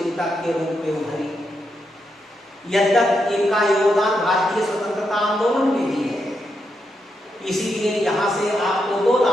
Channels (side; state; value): both; normal; correlation 0.83